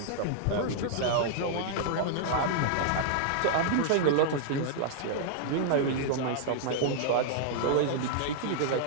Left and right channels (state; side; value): different; both; correlation -0.01